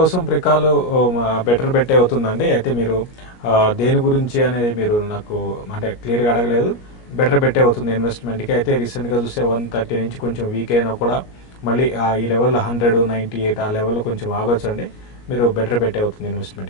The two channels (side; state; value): right; late; 17 ms